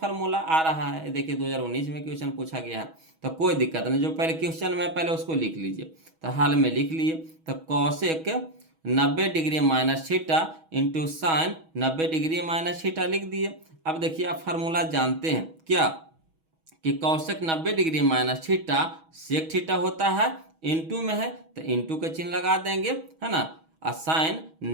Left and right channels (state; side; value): late; left; 6.2 ms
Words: आ रहा है। देखिए 2019 में क्वेश्चन पूछा गया है, तो कोई दिक्कत नहीं, जो पहले क्वेश्चन में पहले उसको लिख लीजिए। तो हाल में लिख लिए, तो Kaushik 90 degree minus theta into sine 90 degree minus theta लिख दिए। अब देखिए आप फार्मूला जानते हैं क्या कि cosec 90 degree minus theta sec theta होता है, इनटू में है तो इनटू का चिन्ह लगा देंगे, है ना। और साइन